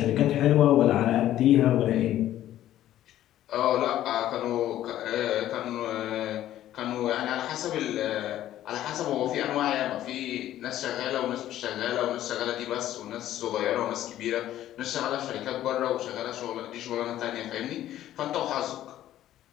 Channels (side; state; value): right; quieter; 12.9 dB